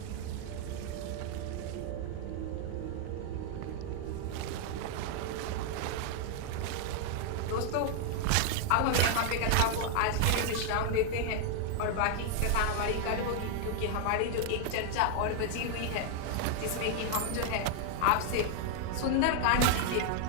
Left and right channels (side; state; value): both; different; correlation 0.00